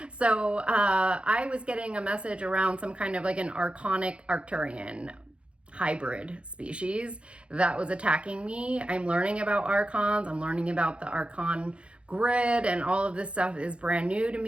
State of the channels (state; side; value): late; left; 0.059 ms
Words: So I was getting a message around some kind of like an archonic Arcturian hybrid species that was attacking me. I'm learning about archons. I'm learning about the archon grid, and all of this stuff is brand new to